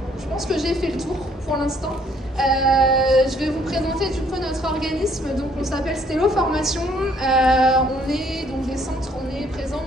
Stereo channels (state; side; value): normal; both; correlation 0.64